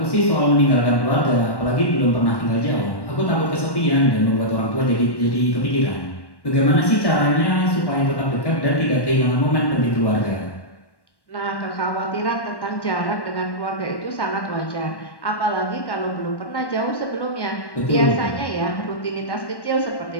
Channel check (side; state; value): right; late; 1.1 ms